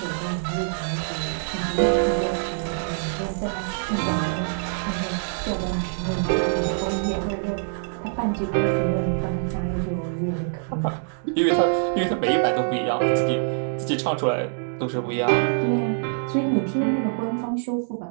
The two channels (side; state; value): left; silent; digital silence